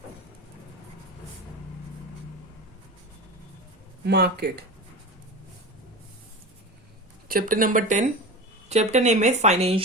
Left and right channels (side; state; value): both; normal; correlation 0.28